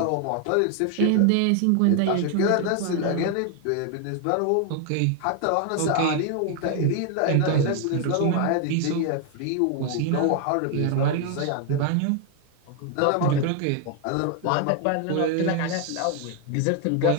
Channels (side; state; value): both; different; correlation 0.01